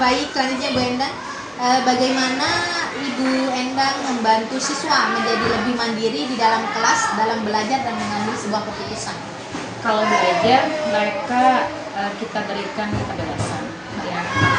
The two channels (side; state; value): both; identical; correlation 1.00